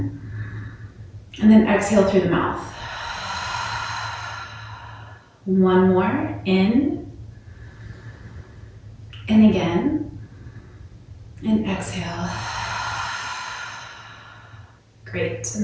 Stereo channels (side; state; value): both; identical; correlation 1.00